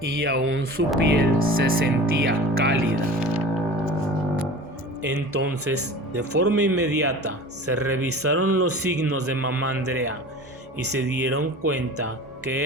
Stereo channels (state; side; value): normal; both; correlation 0.38